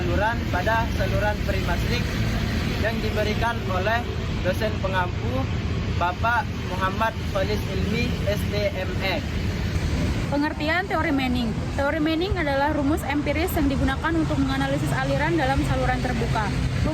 pada saluran perimasrik yang diberikan oleh dosen pengampu Bapak Muhammad Khalis Ilmi STME. Pengertian teori Manning. Teori Manning adalah rumus empiris yang digunakan untuk menganalisis aliran dalam saluran terbuka.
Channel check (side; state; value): both; identical; correlation 1.00